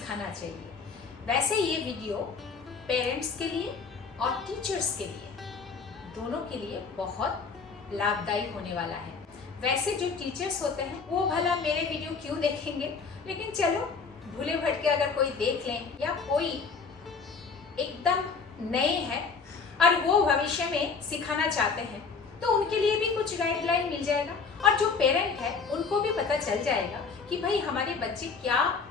चाहिए। वैसे ये वीडियो पेरेंट्स के लिए और टीचर्स के लिए दोनों के लिए बहुत लाभदायी होने वाला है। वैसे जो टीचर्स होते हैं वो भला मेरे वीडियो क्यों देखेंगे, लेकिन चलो भूले भटके अगर कोई देख लें या कोई एकदम नए हैं और वो भविष्य में सिखाना चाहते हैं तो उनके लिए भी कुछ गाइडलाइन मिल जाएगा और जो पेरेंट है उनको भी पता चल जाएगा कि भाई हमारे बच्चे क्या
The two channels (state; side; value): quieter; right; 5.1 dB